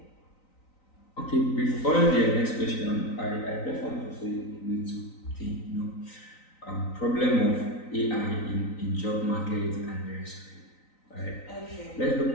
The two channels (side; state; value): right; late; 3.9 ms